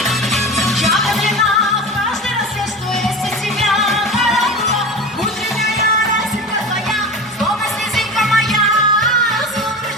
Я влюблена в каждый рассвет, что есть у тебя, каракула. Утренняя росинка твоя, словно слезинка моя.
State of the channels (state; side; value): normal; both; correlation 0.30